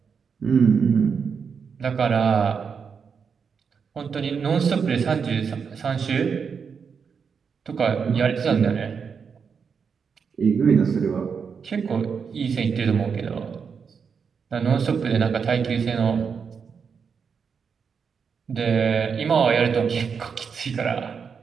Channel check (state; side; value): quieter; left; 6.2 dB